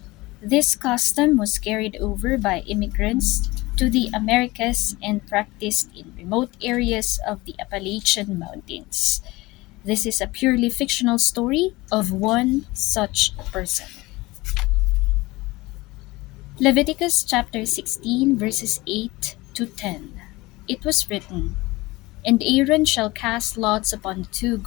This custom was carried over by immigrants to the Americas and practiced in remote areas of the Appalachian Mountains. This is a purely fictional story of one such person. Leviticus chapter 16, verses 8 to 10. It was written, "And Aaron shall cast lots upon the two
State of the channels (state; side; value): quieter; right; 21.0 dB